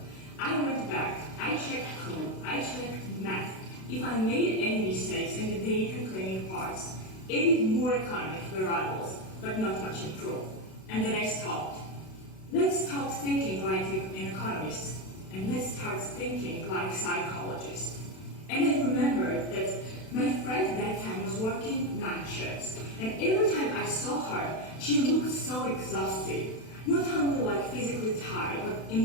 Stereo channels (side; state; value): right; late; 32 ms